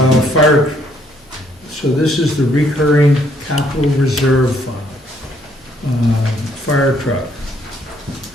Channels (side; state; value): both; normal; correlation 0.68